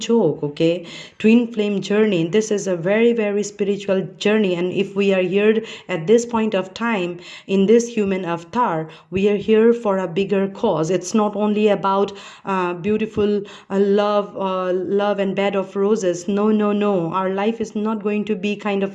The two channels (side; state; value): both; identical; correlation 1.00